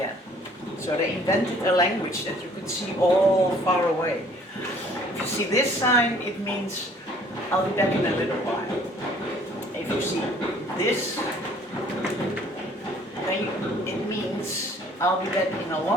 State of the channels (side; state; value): both; normal; correlation 0.57